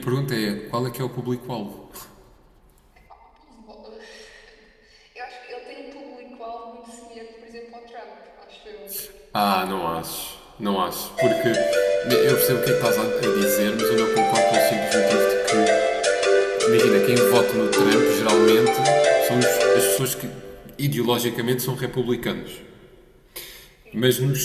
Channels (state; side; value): identical; both; correlation 1.00